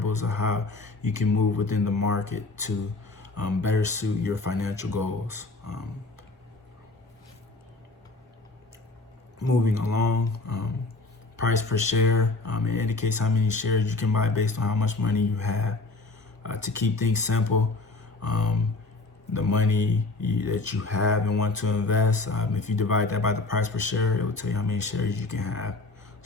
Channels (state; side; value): quieter; right; 3.3 dB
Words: of how you can move within the market to better suit your financial goals. Moving along, price per share. It indicates how many shares you can buy based on how much money you have. To keep things simple, the money that you have and want to invest, if you divide that by the price per share, it will tell you how many shares you can have.